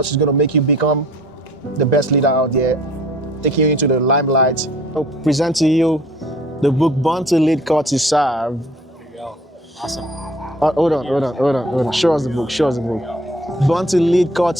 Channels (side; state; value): both; normal; correlation 0.52